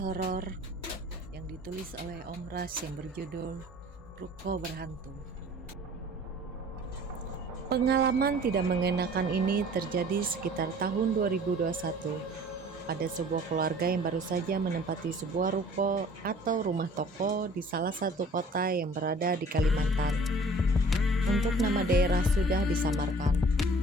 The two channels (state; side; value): normal; both; correlation 0.50